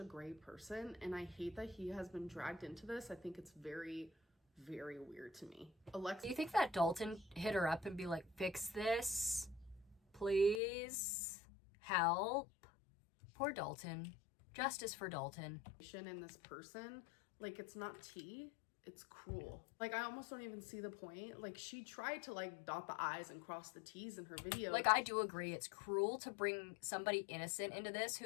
great person, and I hate that he has been dragged into this. I think it's very, very weird to me. Alexis, do you think that Dalton hit her up and be like, fix this? Please? Help? Poor Dalton. Justice for Dalton. in this person, like, it's not tea. It's cruel. Like, I almost don't even see the point. Like, she tried to like dot the I's and cross the T's in her video. Like, I do agree. It's cruel to bring somebody innocent into this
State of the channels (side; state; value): right; drops out; at 10.6 s